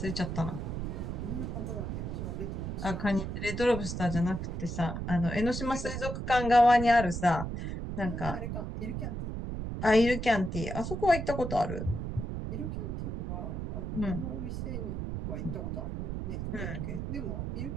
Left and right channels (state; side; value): noise; right; rumble, 4 dB below the sound